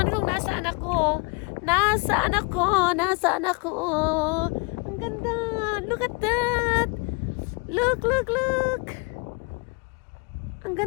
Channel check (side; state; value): right; quieter; 30.0 dB